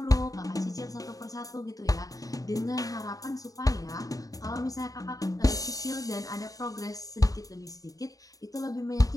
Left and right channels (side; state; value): right; late; 0.17 ms